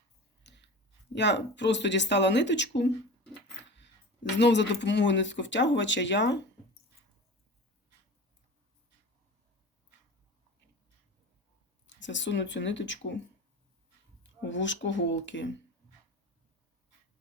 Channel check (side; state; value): both; normal; correlation 0.34